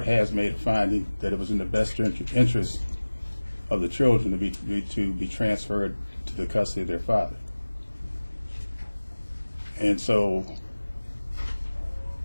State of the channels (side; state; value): both; inverted; correlation -1.00